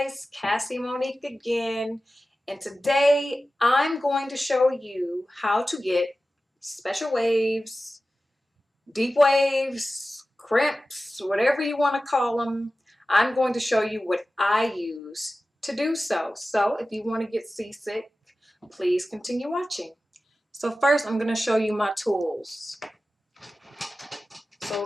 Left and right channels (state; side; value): normal; both; correlation 0.95